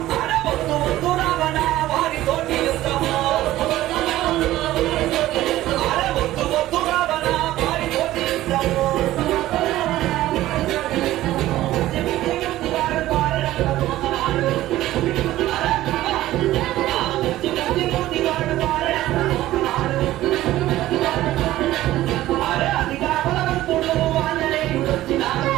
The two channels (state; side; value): quieter; left; 15.2 dB